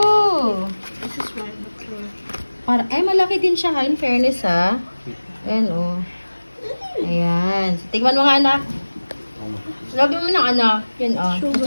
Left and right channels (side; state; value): both; inverted; correlation -1.00